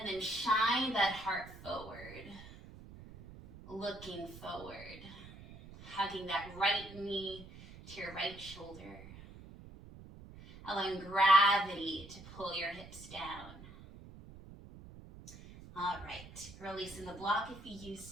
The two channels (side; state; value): right; noise; rumble, 16 dB below the sound